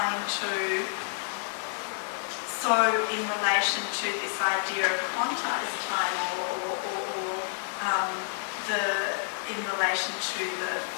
to, so in relation to this idea of quantized time or in relation to the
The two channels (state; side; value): silent; right; digital silence